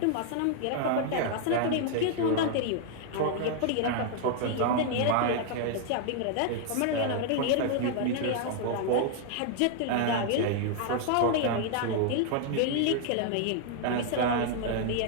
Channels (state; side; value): different; both; correlation 0.00